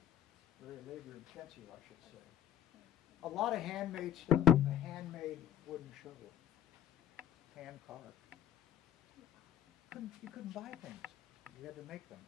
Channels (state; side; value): quieter; right; 10.5 dB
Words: Very labor intensive, I should say. A lot of handmade stuff. A handmade wooden shovel. Hand carved. You couldn't buy things. You had to make them.